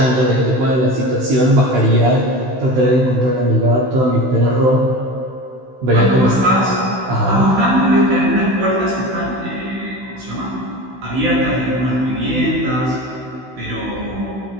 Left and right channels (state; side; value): late; left; 16 ms